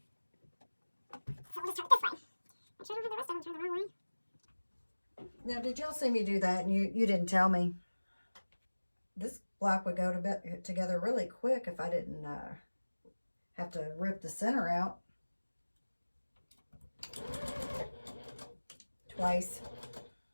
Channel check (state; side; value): inverted; both; correlation -1.00